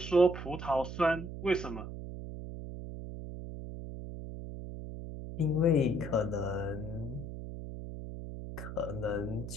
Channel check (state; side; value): noise; right; hum, 8 dB below the sound